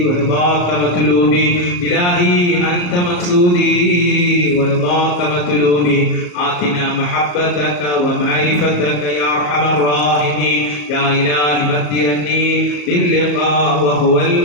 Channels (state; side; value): late; right; 34 ms